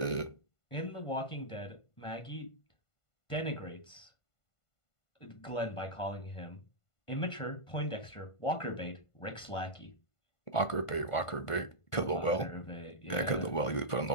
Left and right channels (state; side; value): late; right; 1.5 ms